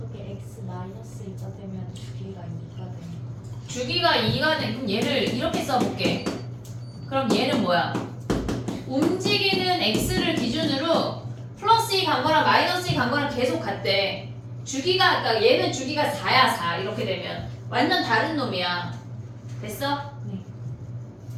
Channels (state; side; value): identical; both; correlation 1.00